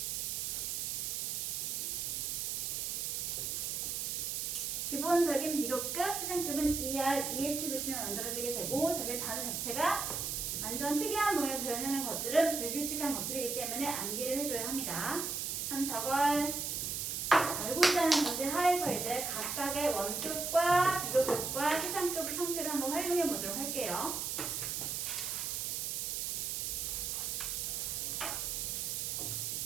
기본적인 비교급, 최상급은 ER, EST 뜻으로 만들어지게 되고 저게 단어 자체가 완전 특이한 모양을 표현하는 것들은 불규칙한 것들이기 때문에 암기를 해줘야 합니다. 그럼 저걸 알고 있다는 전제 하에서 이제 각각의 원급과 비교급과 최상급 형태를 한번 활용해 보도록 할게요.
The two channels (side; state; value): right; noise; hiss, 1 dB below the sound